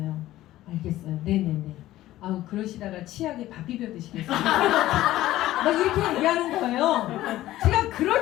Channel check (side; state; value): right; quieter; 15.1 dB